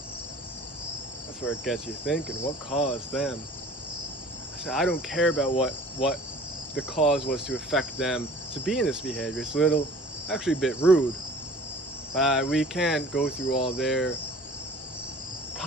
That's where it gets you thinking. What caused them? I said, I don't care about what the cause was to affect them to be in this behavior. It's actually a bit rude. We can't go through all their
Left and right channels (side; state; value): both; normal; correlation 0.47